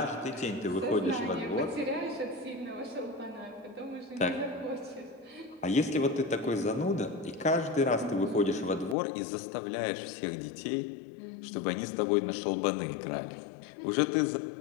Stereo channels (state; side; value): drops out; right; at 9.0 s